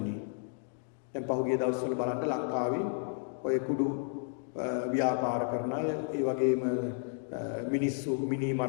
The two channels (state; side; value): silent; right; 56 dB below the other